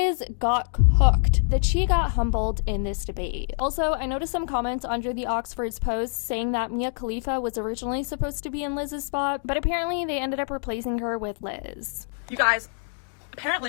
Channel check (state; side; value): silent; right; 59 dB below the other